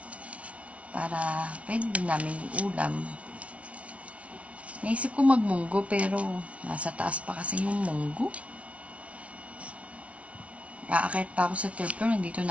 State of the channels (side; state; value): left; late; 0.064 ms